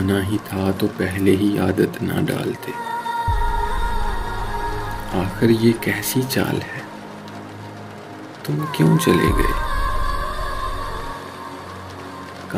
ہی تھا تو پہلے ہی عادت نہ ڈالتے، آخر یہ کیسی چال ہے، تم کیوں چلے گئے؟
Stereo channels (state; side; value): identical; both; correlation 1.00